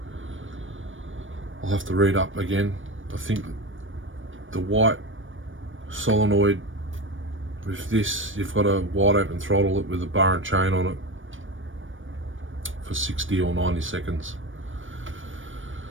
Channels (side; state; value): left; late; 0.57 ms